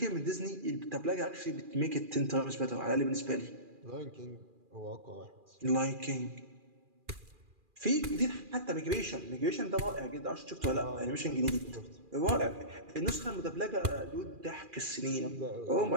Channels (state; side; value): late; left; 2.4 ms